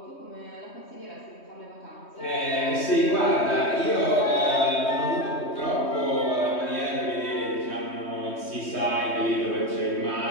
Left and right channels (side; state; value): right; late; 3.2 ms